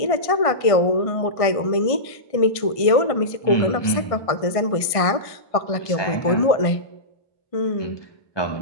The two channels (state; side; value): late; right; 1.5 ms